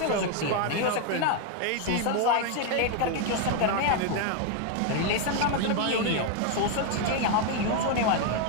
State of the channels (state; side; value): different; both; correlation 0.00